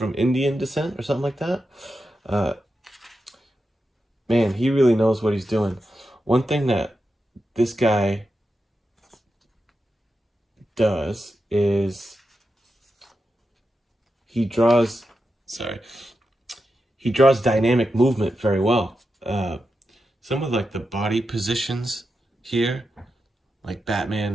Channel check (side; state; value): both; normal; correlation 0.89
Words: Indian descent or something like that. Man, he really knows what he's doing. One thing that this guy does is he draws dynamic movement very well. Some of like the body positions here, like